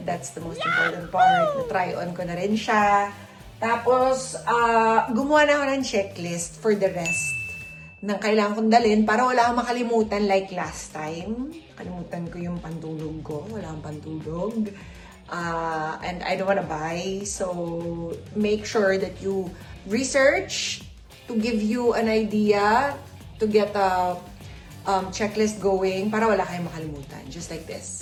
That's the most important part. Na-try on ko na rin siya. Tapos, gumawa na ako ng checklist for the rest ng kailangan kong dalhin para wala akong makalimutan like last time. Kalimutan ko yung pantulog ko. Wala akong pantulog. And I don't wanna buy. So, make sure that you research to give you an idea to get a checklist going para wala kayong makalimutan. Just like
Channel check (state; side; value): identical; both; correlation 1.00